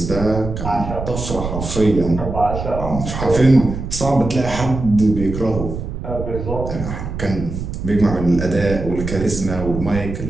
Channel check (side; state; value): right; noise; rumble, 6 dB below the sound